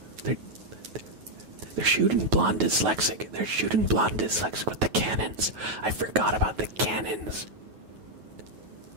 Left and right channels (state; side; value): late; left; 9.4 ms